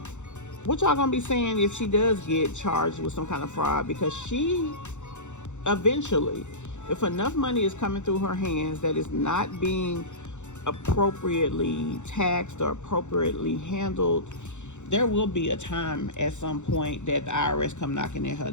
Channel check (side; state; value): right; late; 0.84 ms